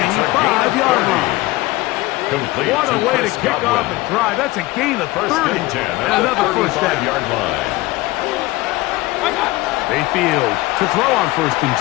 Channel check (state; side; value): quieter; right; 19.7 dB